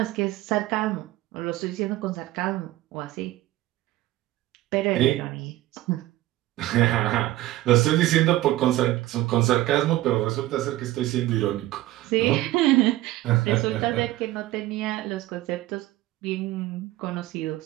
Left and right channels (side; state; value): left; quieter; 16.3 dB